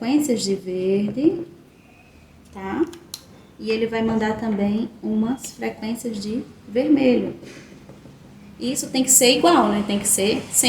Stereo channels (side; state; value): both; identical; correlation 1.00